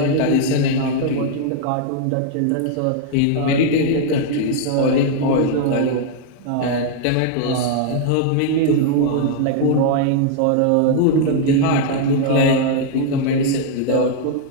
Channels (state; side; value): different; both; correlation 0.00